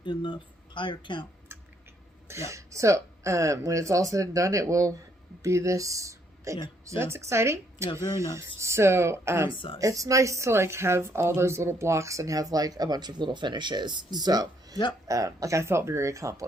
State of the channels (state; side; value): normal; both; correlation 0.70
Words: in the higher count. Yeah. So when it's all said and done, it will be this big. Yeah, so that's exciting. Yeah, very nice. So Nice size. it's nice to like have all those little blocks and have like a bunch of little finishes. So yep. like I felt very